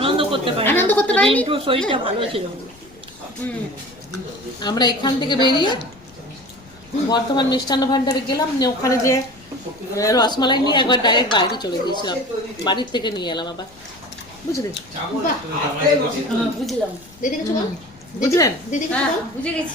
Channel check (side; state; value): left; noise; rumble, 25 dB below the sound